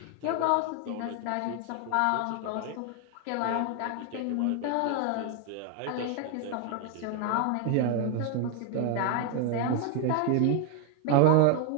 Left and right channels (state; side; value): different; both; correlation 0.00